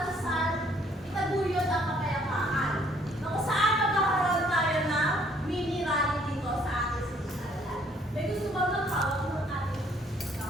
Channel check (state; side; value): normal; both; correlation 0.63